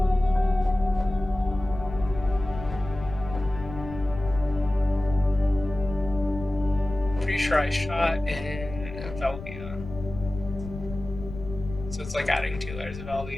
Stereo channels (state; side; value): noise; left; rumble, 12 dB below the sound